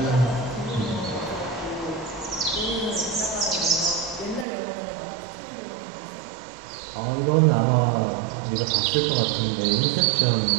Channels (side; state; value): left; drops out; at 4.5 s